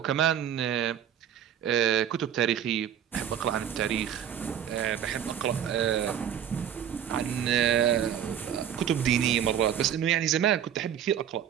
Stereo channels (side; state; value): left; quieter; 9.5 dB